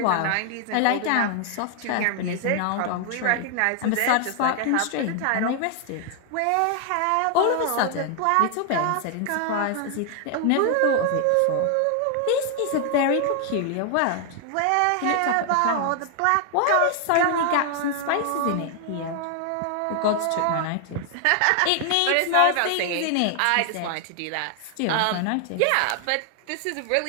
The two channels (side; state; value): both; different; correlation 0.00